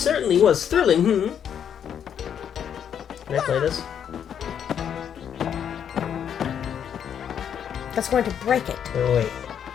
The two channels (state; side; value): quieter; right; 8.6 dB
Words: was thrilling, Can I play this? That's going to break it. Oh, wait.